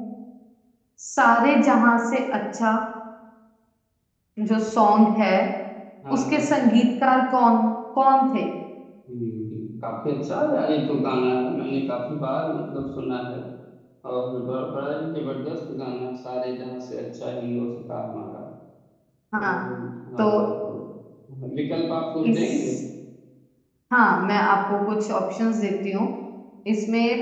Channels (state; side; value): identical; both; correlation 1.00